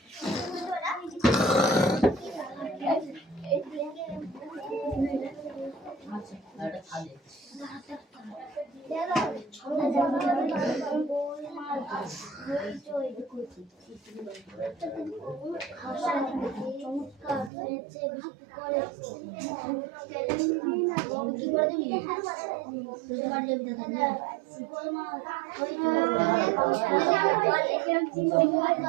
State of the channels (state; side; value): drops out; left; at 17.5 s